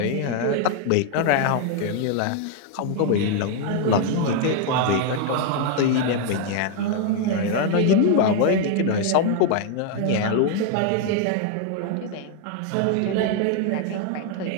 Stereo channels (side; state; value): both; different; correlation 0.00